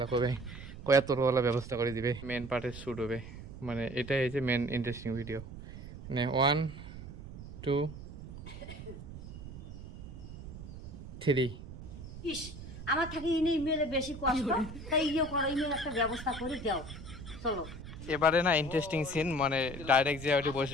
কবে কয়া তোর ওলা ব্যবস্থা করে দিবে। মেন পার্টের শুট হবে, মানে এটাই হচ্ছে মেন ইন্টারেস্টিং ভিডিও। মানে 1 2 3। ইস আমার থাকি ইনি মেলে বেশি কষ্ট তাই ইয়ে করো ইমেল একটা ব্যবস্থা করে দাও চলো এবারে না ইন্টারেস্টিং সিন মানে ডাইরেক্ট যে ওটি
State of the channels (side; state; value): right; noise; rumble, 12 dB below the sound